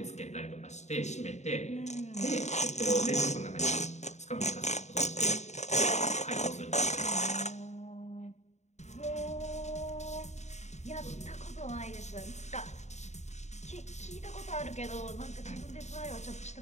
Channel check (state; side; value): late; right; 0.33 ms